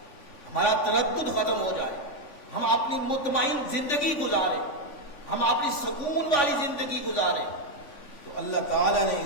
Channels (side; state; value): right; late; 3.5 ms